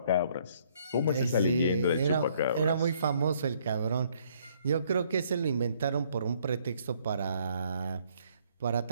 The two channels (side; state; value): both; inverted; correlation -0.65